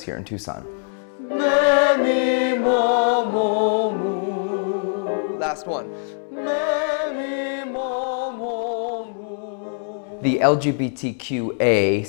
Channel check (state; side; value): silent; right; 63 dB below the other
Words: here in Tucson. Last one. The LGBTQA